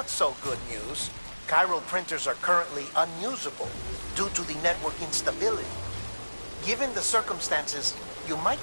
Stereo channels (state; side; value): inverted; both; correlation -1.00